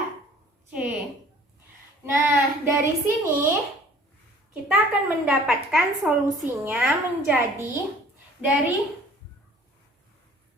c. Nah, dari sini kita akan mendapatkan solusinya menjadi dari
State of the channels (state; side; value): normal; both; correlation 0.52